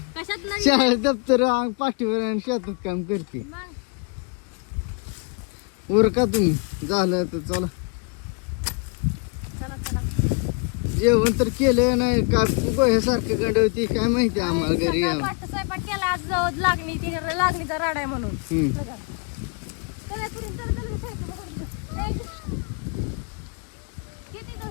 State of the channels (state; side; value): quieter; right; 34.0 dB